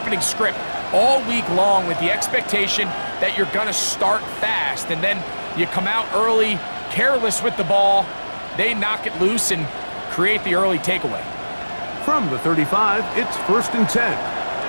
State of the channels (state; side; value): inverted; both; correlation -1.00